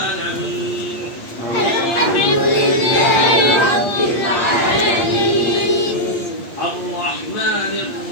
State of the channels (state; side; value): late; right; 8.5 ms